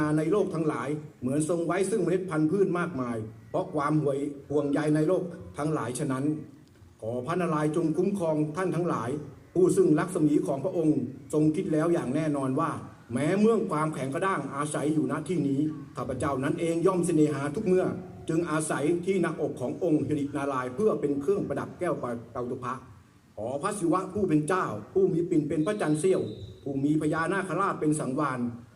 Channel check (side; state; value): both; identical; correlation 1.00